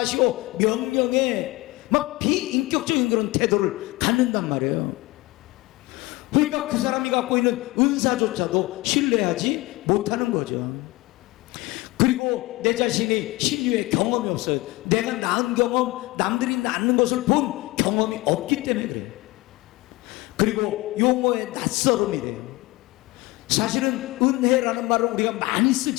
명령해, 막 비인격적인 그런 태도를 갖는단 말이에요. 그러니까 그 사람이 갖고 있는 은사조차도 신뢰하지 못하는 거죠. 그리고 내 자신이 신유의 경험이 없어요. 내가 낳은 경험, 남들이 낳는 것을 본 경험이 없기 때문에 그래요. 그리고 용어의 낯설음이래요. 사실은 은혜라는 말을 우리가 많이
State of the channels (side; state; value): right; quieter; 21.1 dB